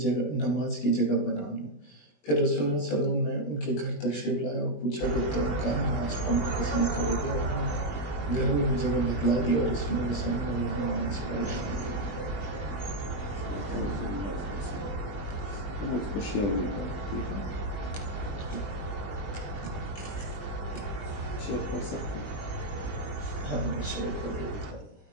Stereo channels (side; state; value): right; late; 20 ms